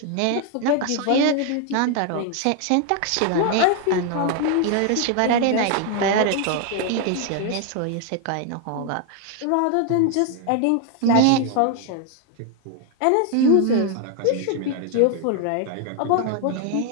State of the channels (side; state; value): both; different; correlation 0.00